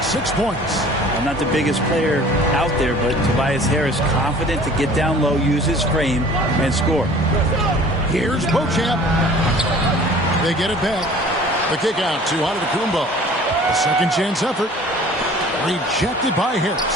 6 points. I'm not the biggest player out there, but Tobias Harris confident to get down low, use his frame, and score. Here's Beauchamp. They get it back. The kick out to Antetokounmpo. A second chance effort. Rejected by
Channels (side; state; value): both; normal; correlation 0.48